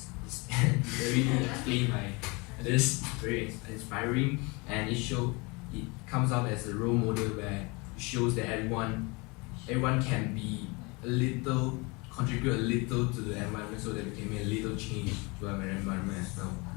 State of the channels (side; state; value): right; quieter; 27.6 dB